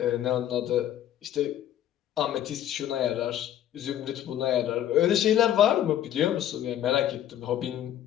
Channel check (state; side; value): quieter; right; 11.4 dB